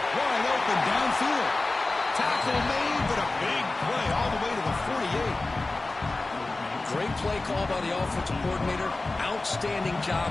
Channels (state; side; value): quieter; right; 3.2 dB